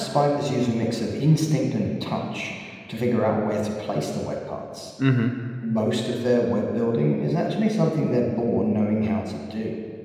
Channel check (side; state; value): both; identical; correlation 1.00